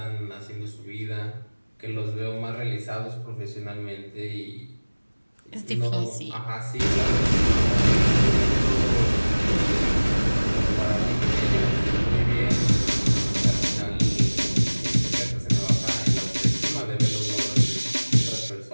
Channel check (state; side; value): inverted; both; correlation -1.00